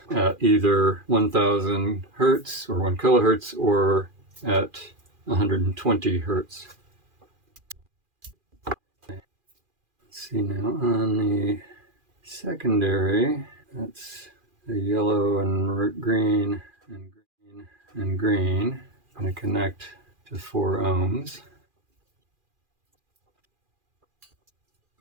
at either 1000 hertz or 1 kilohertz or at 120 hertz. Let's see now on the secondary, that's the yellow and green and green and green. I'm going to connect to 4 ohms.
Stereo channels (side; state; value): left; late; 2.4 ms